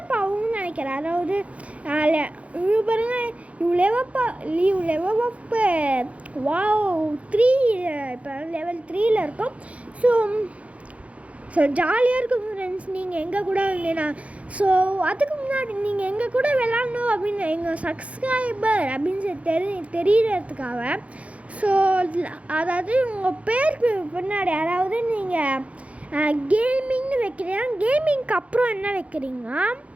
ஆகும்னு நினைக்கிறேன். அதாவது இவ்வளோ பாருங்க, லெவலப்பு வாவ் 3 இப்போ லெவல் 3ல் இருக்கும். ஸோ ஜாலியாக இருக்கும் ஃப்ரெண்ட்ஸ். நீங்கள் எங்கள் கூட வந்தீங்கன்னா ஸோ அதுக்கு முன்னாடி நீங்கள் எங்கள் கூட விளாட்ணும் அப்படின்னு எங்கள் சப்ஸ்கிரைபர் அப்படின்னு தெரியறதுக்காக. ஸோ அதாவது உங்கள் பேருக்கு பின்னாடி அதாவது நீங்கள் கேமிங்னு வைக்கிறீங்க, கேமிங்க்கு அப்புறம் என்ன வைக்கிறீங்க?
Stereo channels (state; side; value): late; left; 0.064 ms